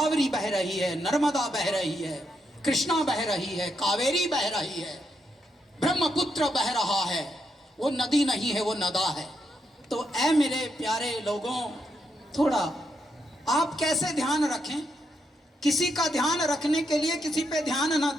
बह रही है, नर्मदा बह रही है, कृष्णा बह रही है, कावेरी बह रही है, ब्रह्मपुत्र बह रहा है। वो नदी नहीं है, वो नदा है। तो ऐ मेरे प्यारे लोगों, थोड़ा आप कैसे ध्यान रखें। किसी का ध्यान रखने के लिए किसी पे ध्यान ना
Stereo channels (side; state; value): both; normal; correlation 0.80